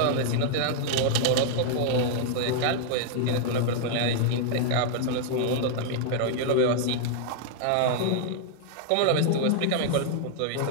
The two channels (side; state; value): both; different; correlation -0.01